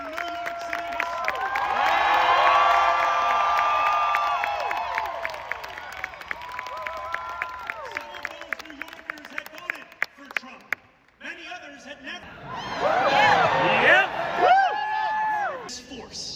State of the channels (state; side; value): identical; both; correlation 1.00